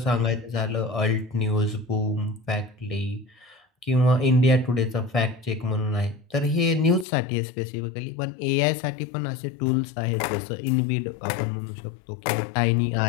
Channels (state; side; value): drops out; right; at 7.1 s